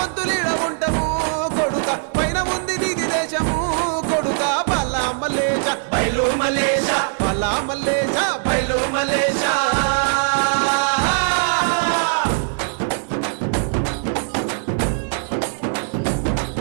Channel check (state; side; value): silent; left; digital silence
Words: ఉంటాము కొడుక పైన ఉంది నీది దేశము కొడుక బాలా మలేష బయలు మలేష బాలా మలేష బయలు మలేష